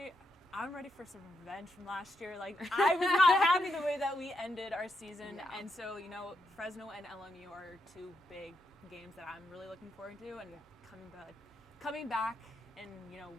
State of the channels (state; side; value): normal; both; correlation 0.81